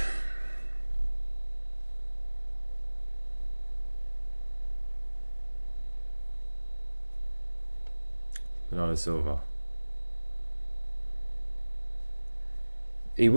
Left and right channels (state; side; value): inverted; both; correlation -1.00